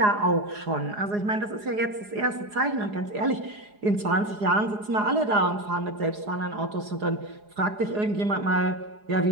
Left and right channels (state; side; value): late; left; 4.8 ms